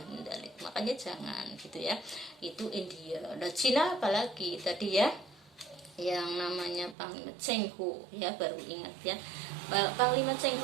min dzalik. Makanya jangan gitu ya. Itu India. Nah Cina apalagi tadi ya, yang namanya Panglima Cheng Ho ya, baru ingat ya. Panglima Cheng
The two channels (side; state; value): left; drops out; at 7.0 s